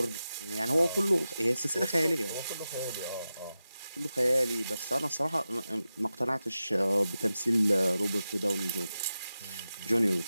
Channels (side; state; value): both; inverted; correlation -0.92